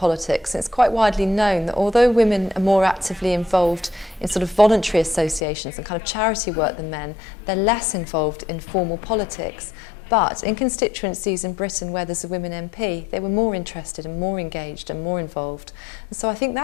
It's quite widely known that although women are more actively involved in sort of voluntary associations and kind of charity work than men, they're less involved in formal politics. But in constituencies in Britain where there's a women MP, they were more interested and more engaged and more involved. And so I think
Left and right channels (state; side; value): drops out; right; at 5.4 s